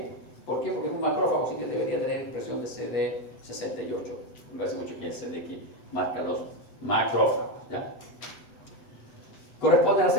¿Por qué? Porque es un macrófago, así que debería tener expresión de CD68. Me parece mucho que es el CD que marca los macrófagos, ¿ya? Corresponden a las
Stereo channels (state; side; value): late; right; 7.9 ms